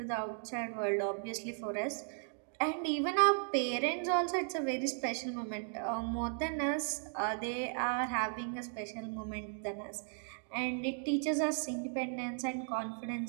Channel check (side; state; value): left; silent; 54 dB below the other